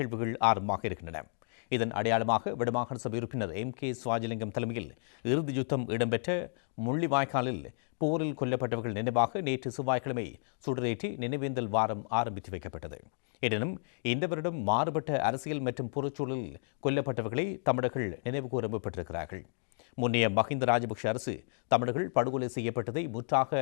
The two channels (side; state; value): right; silent; digital silence